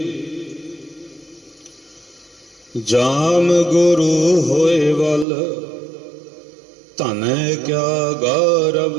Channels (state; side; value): drops out; left; at 5.2 s